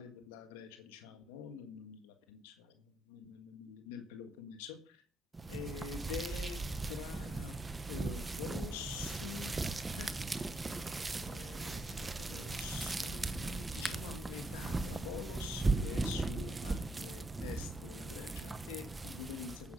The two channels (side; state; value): both; normal; correlation 0.78